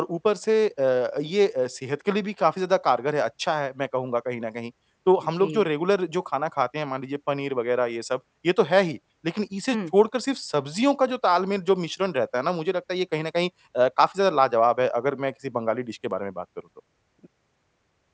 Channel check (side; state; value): both; identical; correlation 1.00